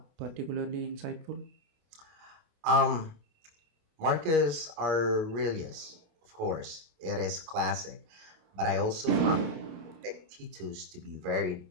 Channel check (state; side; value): late; left; 28 ms